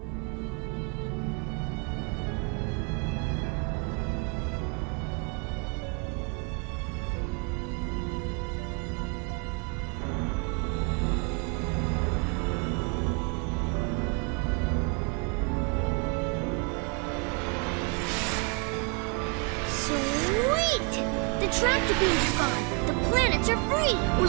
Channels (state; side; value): quieter; left; 35.6 dB